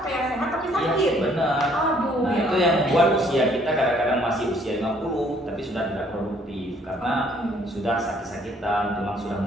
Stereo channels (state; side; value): normal; both; correlation 0.63